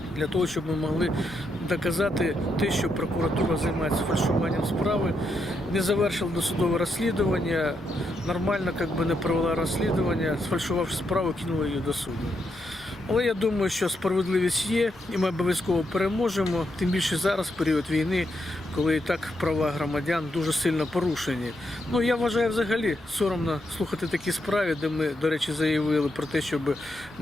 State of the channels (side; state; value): both; normal; correlation 0.81